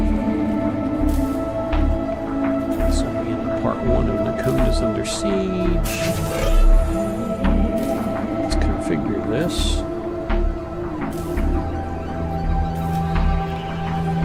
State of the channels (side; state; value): both; identical; correlation 1.00